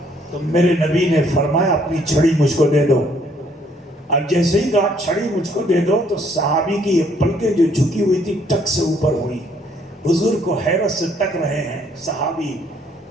تو میرے نبی نے فرمایا اپنی چھڑی مجھ کو دے دو. اور جیسے ہی کہا چھڑی مجھ کو دے دو تو صحابی کی یہ پلکیں جو جھکی ہوئی تھی ٹک سے اوپر ہوئی. حضور کو حیرت سے تک رہے ہیں صحابی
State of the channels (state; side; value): normal; both; correlation 0.65